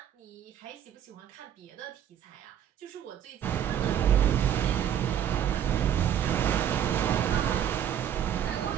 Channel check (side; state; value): left; quieter; 9.8 dB